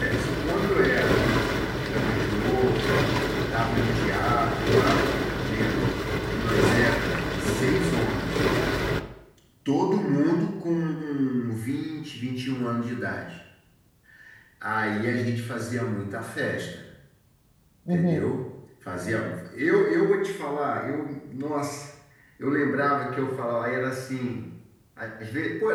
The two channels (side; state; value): both; identical; correlation 1.00